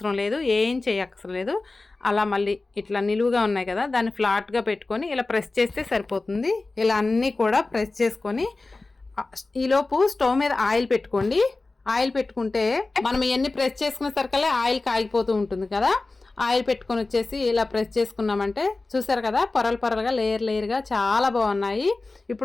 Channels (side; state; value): right; quieter; 3.4 dB